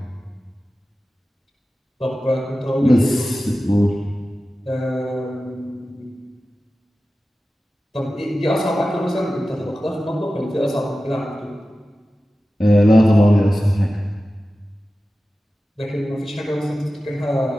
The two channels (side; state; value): both; normal; correlation 0.95